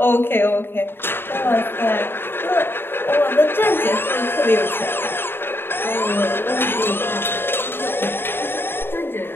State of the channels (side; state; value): right; late; 0.11 ms